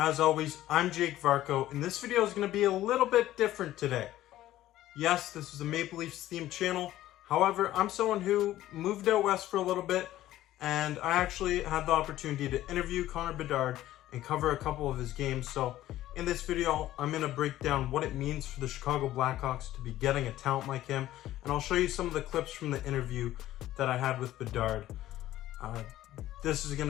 always, I'm Jake Varco, and this video is going to be a little bit different today. Yes, this is a Maple Leafs themed channel. However, I'm someone who moved out west for a little bit, and I actually had the opportunity to interview Connor Bedard and cover a couple of his games. So in this video, I'm going to break down what it means for the Chicago Blackhawks to be getting a talent like him, and I'll show you some of the clips from the interview that I had with Bedard. This is going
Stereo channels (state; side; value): quieter; right; 14.3 dB